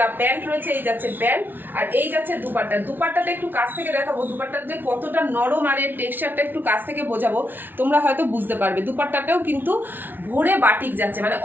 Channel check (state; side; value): late; left; 0.093 ms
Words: প্যান্ট রয়েছে। এই যাচ্ছে প্যান্ট, আর এই যাচ্ছে দুপাট্টা। দুপাট্টাটা একটু কাছ থেকে দেখাবো, দুপাট্টাটা যে কতটা নরম আর এর টেক্সচারটা একটু কাছ থেকে বোঝাবো, তোমরা হয়তো বুঝতে পারবে। দুপাট্টাটাও কিন্তু ভরে বাটিক যাচ্ছে, মানে